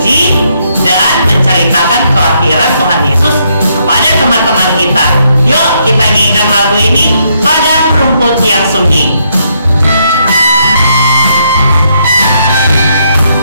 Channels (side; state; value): both; inverted; correlation -0.74